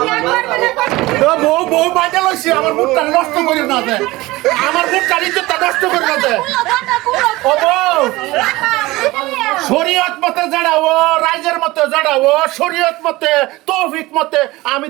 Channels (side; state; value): left; quieter; 19.9 dB